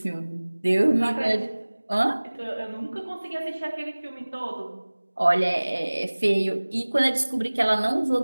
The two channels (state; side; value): inverted; both; correlation -1.00